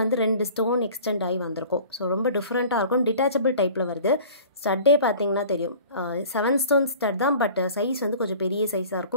வந்து 2 ஸ்டோன் எக்ஸ்டெண்ட் ஆகி வந்திருக்கும். ஸோ ரொம்ப டிஃப்ரெண்ட்டாக இருக்கும். டிட்டாச்சபிள் டைப்பில் வருது. ஸ்டட்டே பார்த்திங்கன்னா தெரியும் 7 ஸ்டோன் ஸ்டட் தான். பட் சைஸ் வந்து கொஞ்சம் பெரிய சைஸாக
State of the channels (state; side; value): inverted; both; correlation -0.44